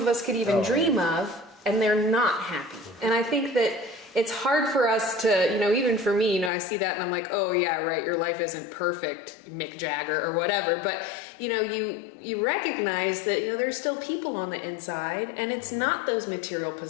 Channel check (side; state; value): right; drops out; at 6.5 s